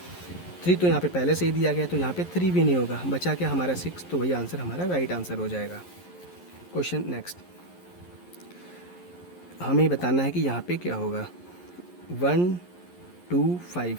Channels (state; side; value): late; right; 11 ms